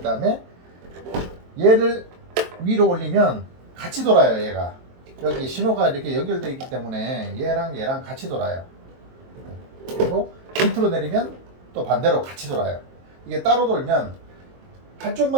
다음에 얘를 위로 올리면 같이 돌아요. 얘가 여기 신호가 이렇게 연결되어 있기 때문에 얘랑 같이 돌아요. 그리고 밑으로 내리면 또 반대로 같이 돌아요. 이게 따로 돌면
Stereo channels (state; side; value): late; left; 23 ms